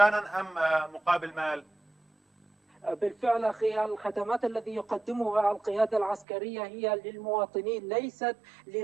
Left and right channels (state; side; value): drops out; left; at 6.2 s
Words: أم مقابل مال؟ بالفعل أخي، الخدمات التي يقدمها القيادة العسكرية هي للمواطنين ليست